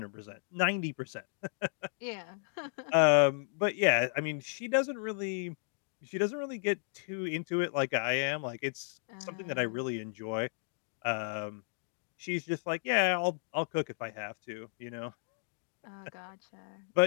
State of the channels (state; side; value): silent; right; digital silence